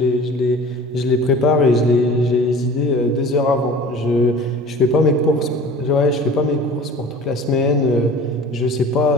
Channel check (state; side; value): normal; both; correlation 0.42